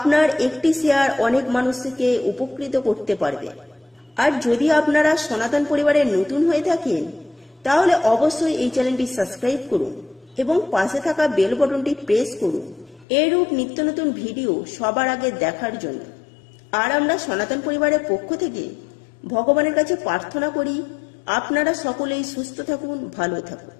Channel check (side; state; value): right; drops out; at 13.1 s